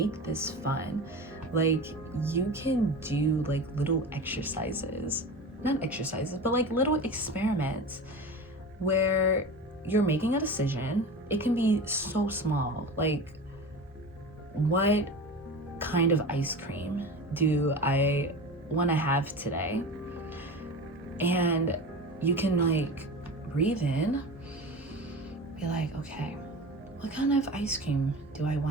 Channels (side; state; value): both; normal; correlation 0.31